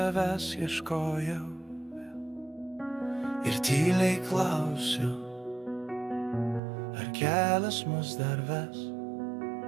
ieškojau ir tyliai klausiu, ar kelias mus dar ves,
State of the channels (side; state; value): left; drops out; at 6.6 s